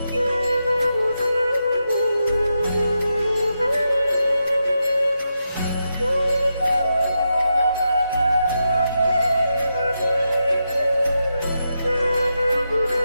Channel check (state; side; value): inverted; both; correlation -0.86